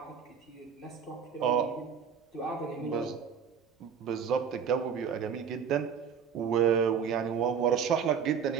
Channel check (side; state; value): left; quieter; 7.1 dB